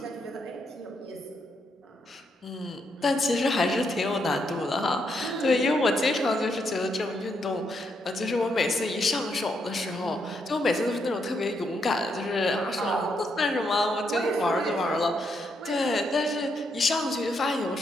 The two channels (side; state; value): both; normal; correlation 0.78